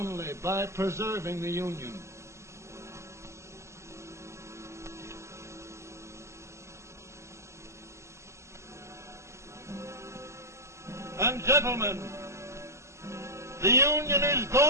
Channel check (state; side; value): late; left; 0.13 ms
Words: by preserving the Union. And gentlemen, the Union is